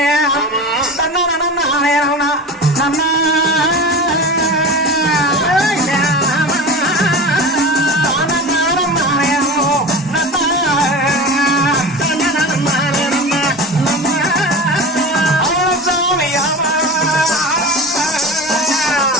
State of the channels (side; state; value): both; normal; correlation 0.31